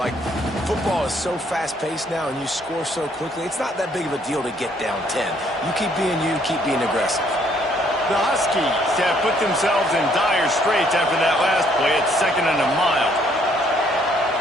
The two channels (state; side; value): normal; both; correlation 0.66